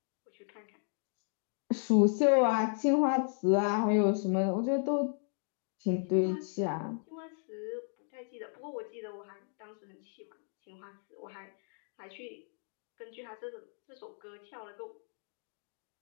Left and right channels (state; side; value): silent; right; 55 dB below the other